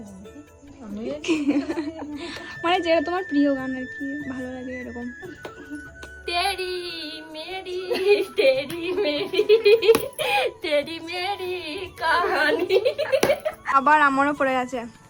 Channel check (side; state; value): both; identical; correlation 1.00